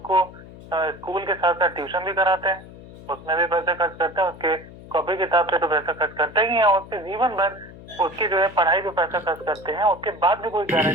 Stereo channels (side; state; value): left; noise; hum, 17 dB below the sound